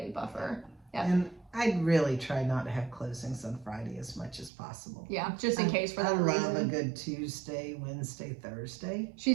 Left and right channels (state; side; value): drops out; left; at 4.5 s